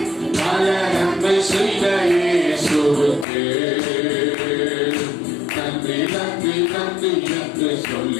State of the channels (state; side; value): drops out; right; at 3.2 s